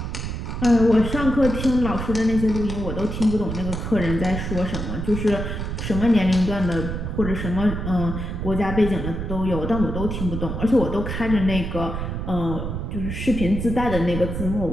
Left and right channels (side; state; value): right; noise; rumble, 4 dB below the sound